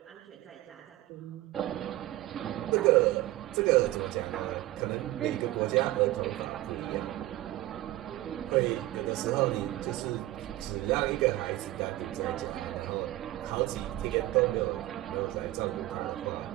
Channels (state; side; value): quieter; left; 16.5 dB